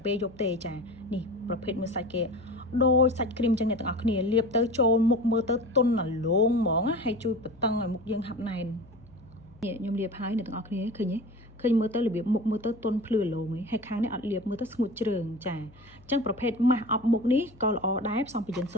ពេលយប់ទេចានេះប្រភេទមើលសាច់គេដូចសាច់គ្រីមចឹងអ្នកទាំងអស់គ្នាលាបទៅចូលមុខមើលទៅទន់អាឡូងហ្មងហើយជួយបន្តឹងឲ្យមុខយើងហាប់ណែននេះខ្ញុំលាបហើយអ្នកទាំងអស់គ្នាឃើញទេឃើញមើលទៅរបៀបមុខមើលទៅទន់ភ្លឺឡូងហើយខាងនេះអត់លាបមើលទៅស្ងួតជ្រើងចាអញ្ចឹងប្រភេទម៉ាស់អប់មុខនេះក៏ល្អដែរផ្សំពី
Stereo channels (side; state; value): left; noise; hum, 25 dB below the sound